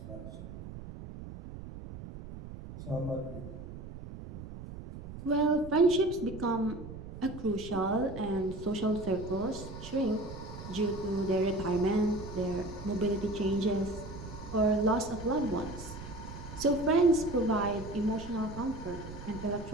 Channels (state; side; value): noise; right; rumble, 11 dB below the sound